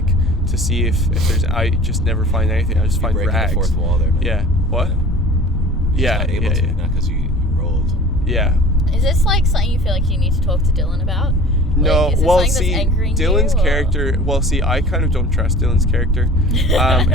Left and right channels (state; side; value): normal; both; correlation 0.43